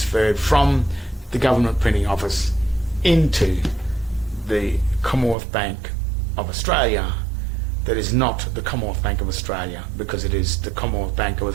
from the government printing office into the Commonwealth Bank of Australia. That is not the Commonwealth Bank of Australia, because it is the Commonwealth Bank of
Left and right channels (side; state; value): left; drops out; at 5.4 s